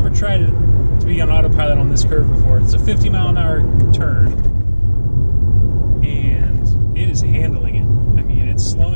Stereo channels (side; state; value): both; inverted; correlation -1.00